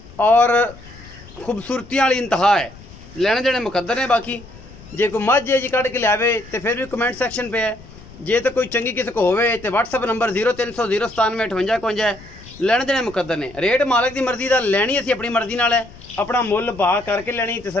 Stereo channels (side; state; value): left; noise; rumble, 19 dB below the sound